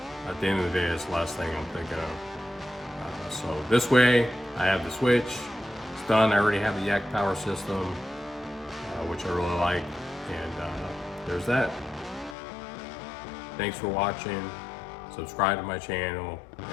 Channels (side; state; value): right; drops out; at 12.4 s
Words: At the end of the day, it's the last thing I'm thinking of. So this way, I have the switch. It's done. I already have the Yak Power system, which I really like. And there's that. Thanks for watching. Subscribe to my channel,